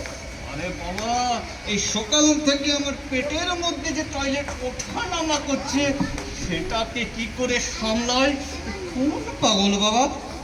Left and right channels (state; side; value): identical; both; correlation 1.00